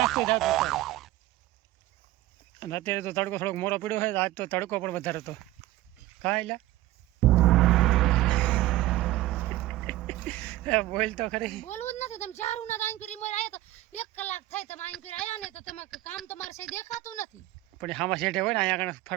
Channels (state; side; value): quieter; left; 16.5 dB